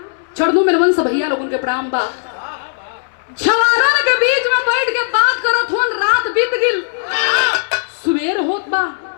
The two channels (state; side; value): silent; right; 69 dB below the other